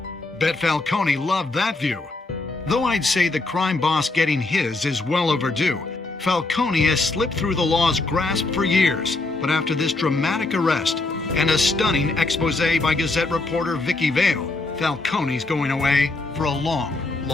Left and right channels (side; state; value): right; quieter; 3.2 dB